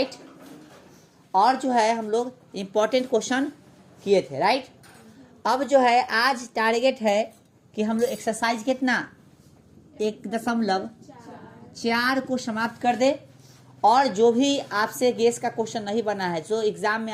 और जो है हम लोग इम्पोर्टेंट क्वेश्चन किए थे, राइट। अब जो है आज टारगेट है कि हम लोग एक्सरसाइज कितना 1.4 को समाप्त कर दे। और जो भी आपसे गेस का क्वेश्चन नहीं बना है जो एग्जाम में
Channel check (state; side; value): identical; both; correlation 1.00